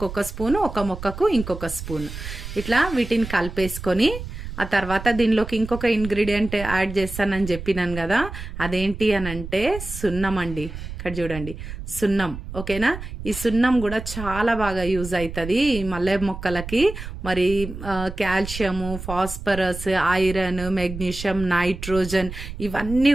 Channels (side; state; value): right; noise; rumble, 10 dB below the sound